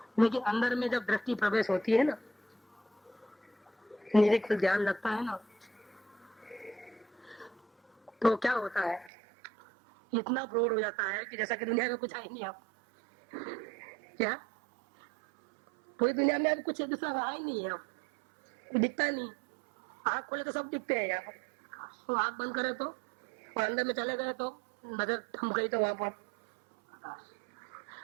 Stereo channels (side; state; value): left; drops out; at 9.1 s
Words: लेकिन अंदर में जब दृष्टि प्रवेश होती है ना, निरीक्षण ध्यान लगता है ना, तो क्या होता है, इतना प्रौढ़ हो जाता है कि जैसा कि दुनिया में कुछ है ही नहीं। आप क्या पूरी दुनिया में अब कुछ दूसरा रहा ही नहीं है, अब कोई दिखता ही नहीं। आँख खोले तो सब दिखते हैं यहाँ पर, तो आँख बंद करे तो, और अंदर में चले गए तो नजर थम गई तो वहां पर